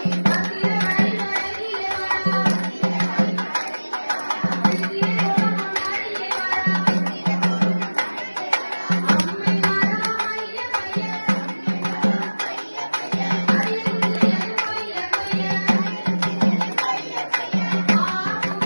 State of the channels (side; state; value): both; inverted; correlation -1.00